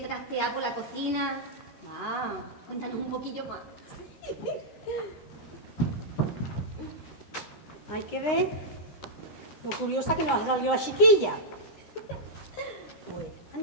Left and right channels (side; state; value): right; late; 13 ms